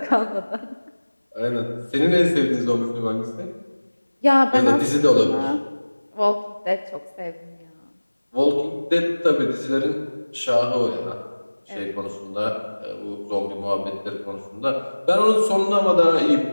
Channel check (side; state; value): both; inverted; correlation -1.00